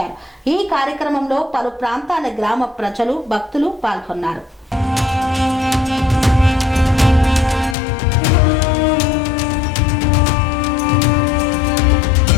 ఈ కార్యక్రమంలో పలు ప్రాంతాల గ్రామ ప్రజలు భక్తులు పాల్గొన్నారు.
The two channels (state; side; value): drops out; right; at 7.8 s